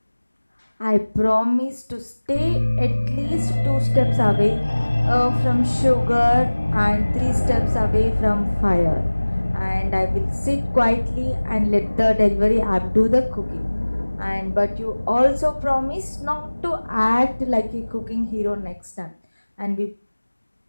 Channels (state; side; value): inverted; both; correlation -1.00